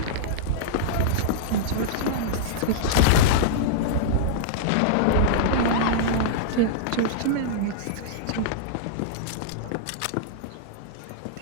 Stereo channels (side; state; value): both; different; correlation -0.02